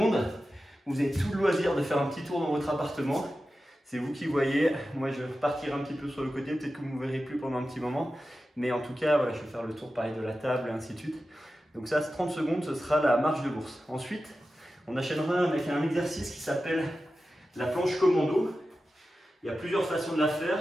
vous avez tout le loisir de faire un petit tour dans votre appartement. C'est vous qui voyez. Moi, je vais repartir un petit peu sur le côté. Peut-être que vous ne me verrez plus pendant un petit moment. Mais en tout cas, voilà, je vais faire le tour pareil de la table et ainsi de suite. Donc ça, 30 secondes, ce sera la marche de l'ours. Ensuite, on enchaînera avec un exercice qui s'appelle la planche commando. Il y a plusieurs façons de la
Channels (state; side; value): normal; both; correlation 0.93